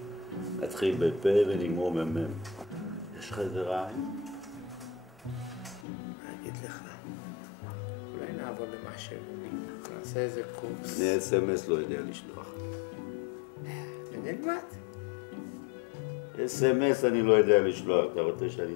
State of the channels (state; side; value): drops out; right; at 5.9 s